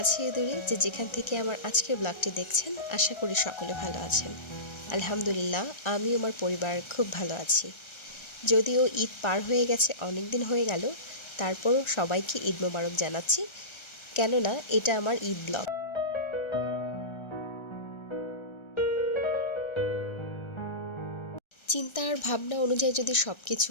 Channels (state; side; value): late; right; 1.3 ms